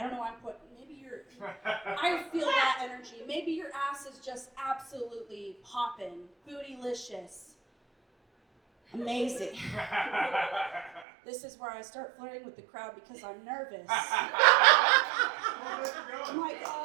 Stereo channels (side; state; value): left; drops out; at 11.1 s